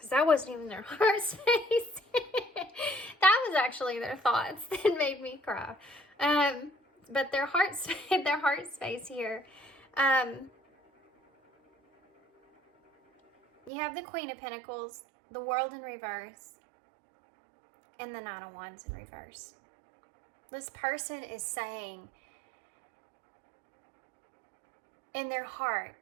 that wasn't even their heart space. That was actually their thoughts that made me cry. But their heart space here. You have the Queen of Pentacles, the World in reverse, and the Nine of Wands in reverse. This person is saying in their heart,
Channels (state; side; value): drops out; left; at 13.7 s